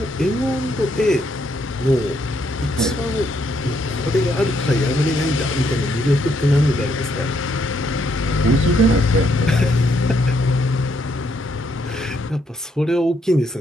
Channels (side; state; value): both; normal; correlation 0.74